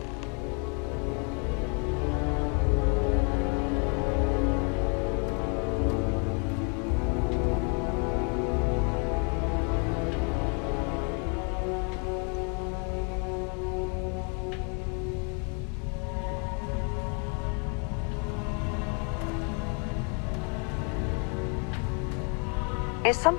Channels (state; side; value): quieter; right; 37.6 dB